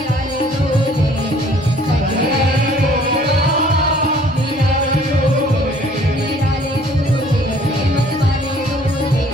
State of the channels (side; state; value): both; normal; correlation 0.56